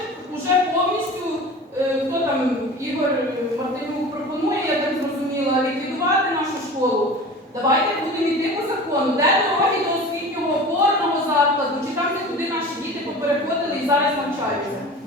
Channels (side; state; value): both; normal; correlation 0.37